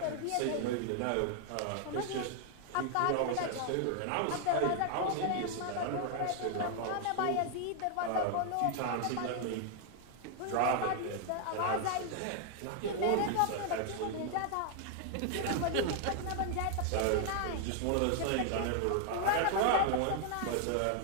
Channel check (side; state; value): both; different; correlation 0.00